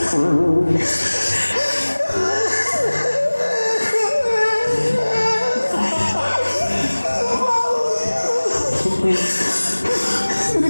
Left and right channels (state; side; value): inverted; both; correlation -1.00